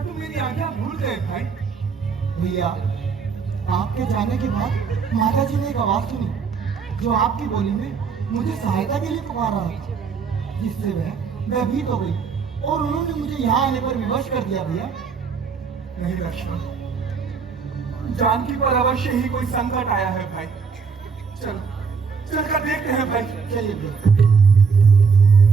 तुम मेरी आज्ञा भूल गए भाई। भैया, आपके जाने के बाद माता जी ने एक आवाज सुनी जो आपकी बोली में मुझे सहायता के लिए पुकार रहा था, जिससे मैं भयभीत हो गई। और उन्होंने मुझे यहाँ आने पर विवश कर दिया भैया। नहीं लक्ष्मण, जानकी पर अवश्य ही कोई संकट आया है भाई। चल चलकर देखते हैं भाई। चलिए भैया।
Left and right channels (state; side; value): quieter; left; 5.6 dB